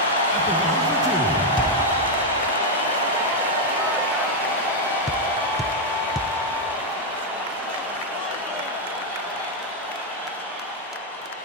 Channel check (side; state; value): both; normal; correlation 0.01